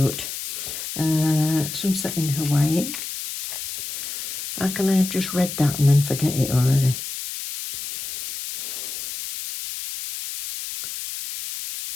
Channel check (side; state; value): left; noise; hiss, 7 dB below the sound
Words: Sunset in Hawaii. How can I have just read that and then forget it already?